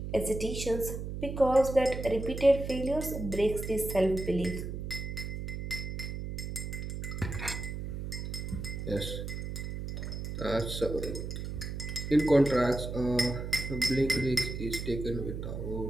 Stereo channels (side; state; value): right; noise; hum, 5 dB below the sound